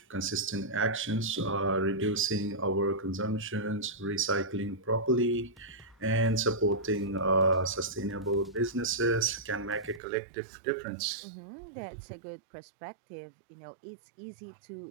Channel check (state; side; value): drops out; left; at 10.0 s